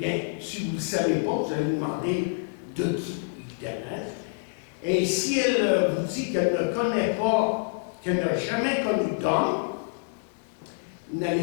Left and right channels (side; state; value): right; silent; digital silence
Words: si vous ne le savez pas, vous allez vous demander de qui, évidemment. Et si elle vous dit qu'elle ne connaît pas, qu'elle n'a jamais connu d'homme, vous